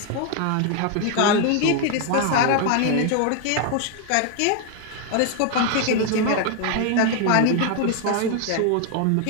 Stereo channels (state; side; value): different; both; correlation 0.00